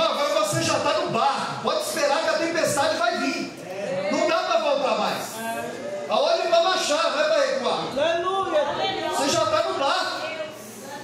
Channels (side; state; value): both; identical; correlation 1.00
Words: agora você já está no barco. Pode esperar que a tempestade vai vir. Não dá para voltar mais. Aonde vai baixar, não é para recuar. Aleluia. Você já está no barco.